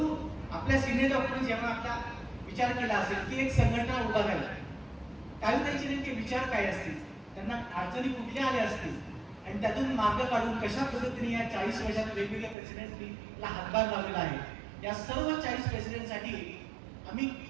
आपल्या सिनियर डॉक्टरने जेव्हा आपला विचार केला असेल की एक संघटना उभा झाली, काही त्यांचे नेमके विचार काय असतील, त्यांना अडचणी कुठल्या आल्या असतील आणि त्यातून मार्ग काढून कशा पद्धतीने या 40 वर्षात वेगवेगळ्या प्रेसिडेंटला हातभार लावलेला आहे, या सर्व 40 प्रेसिडेंटसाठी आम्ही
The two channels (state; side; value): drops out; left; at 12.6 s